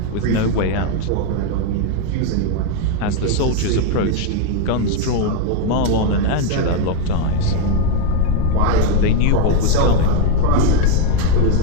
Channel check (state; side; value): different; both; correlation 0.01